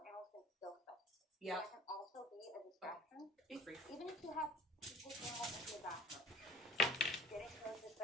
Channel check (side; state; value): both; normal; correlation 0.50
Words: animals can still stuff. Yeah. That can also be a distraction. Be free. Even if you have to take animals into the bathroom, getting those